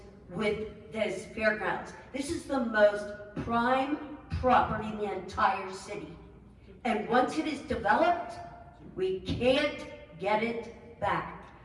with this fairgrounds. This is the most prime property in the entire city. And once it is developed, we can't get it back.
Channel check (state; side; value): identical; both; correlation 1.00